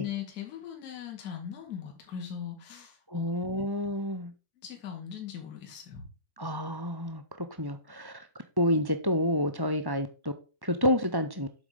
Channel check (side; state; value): left; late; 1.1 ms